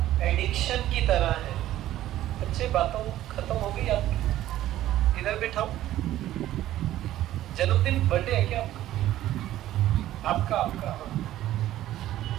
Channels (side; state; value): left; quieter; 13.8 dB